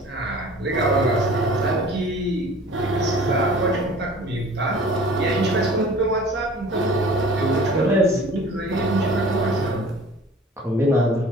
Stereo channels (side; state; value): both; normal; correlation 0.46